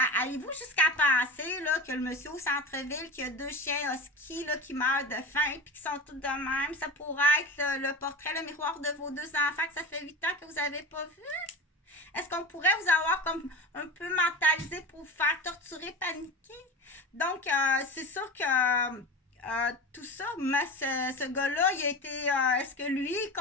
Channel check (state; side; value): normal; both; correlation 0.29